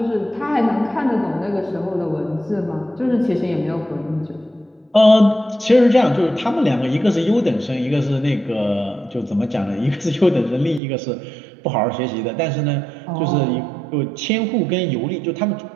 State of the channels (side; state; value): left; drops out; at 10.8 s